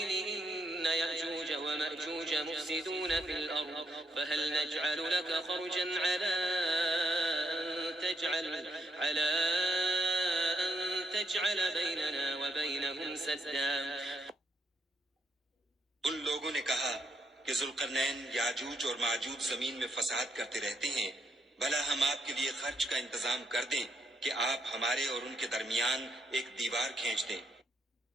إن يأجوج ومأجوج مفسدون في الأرض فهل نجعل لك خرجا على أن تجعل بيننا وبينهم سدا. ان لوگوں نے کہا کہ ذوالقرنین یاجوج اور ماجوج زمین میں فساد کرتے رہتے ہیں، بھلا ہم آپ کے لیے خرچ کا انتظام کر دیں کہ آپ ہمارے اور ان کے درمیان ایک دیوار کھینچ دیں.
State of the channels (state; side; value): normal; both; correlation 0.77